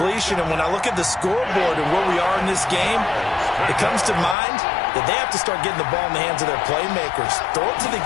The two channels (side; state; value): right; drops out; at 4.4 s